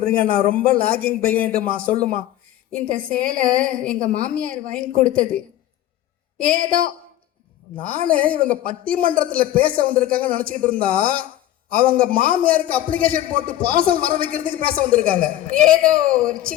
நான் ரொம்ப லாகிங் பையன்ட்டுமா. சொல்லுமா. இந்த சேலை எங்க மாமியார் வாங்கி கொடுத்தது. ஏதோ நானே இவங்க பட்டிமன்றத்தில் பேச வந்திருக்காங்கன்னு நினச்சிக்கிட்டு இருந்தா, அவங்க மாமியாருக்கு அப்ளிகேஷன் போட்டு பார்சல் வர வைக்கிறதுக்கு பேச வந்திருக்காங்க. ஏதோ ஒரு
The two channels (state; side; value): quieter; right; 13.2 dB